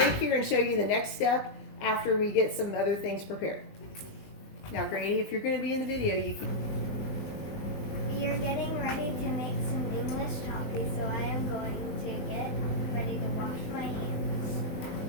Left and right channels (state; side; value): late; right; 20 ms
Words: here and show you the next step after we get some other things prepared. Now, Grady, if you're going to be in the video, you can. We are getting ready to make some English toffee, so I am going to get ready to wash my hands.